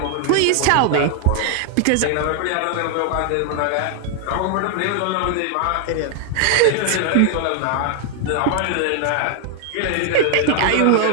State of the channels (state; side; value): different; both; correlation 0.00